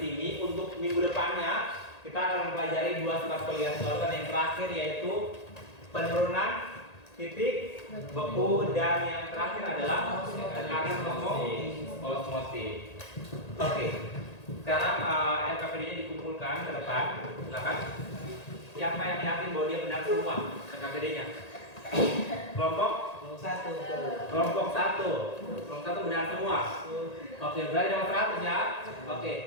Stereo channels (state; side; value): late; right; 1.8 ms